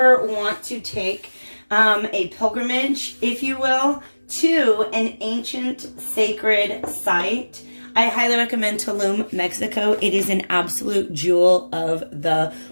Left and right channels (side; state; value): both; inverted; correlation -1.00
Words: want to take a pilgrimage, if you will, to an ancient sacred site, I highly recommend Tulum, Mexico. It is an absolute jewel of the